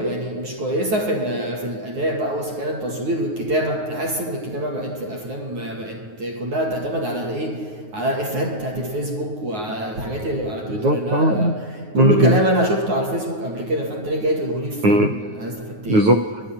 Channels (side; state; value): left; late; 9.4 ms